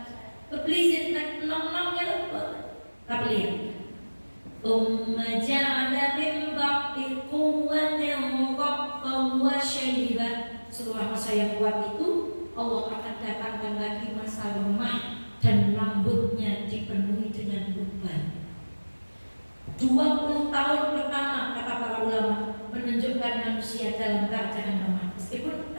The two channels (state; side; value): inverted; both; correlation -1.00